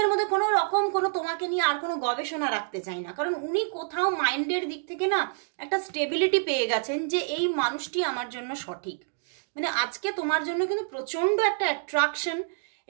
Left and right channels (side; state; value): left; silent; digital silence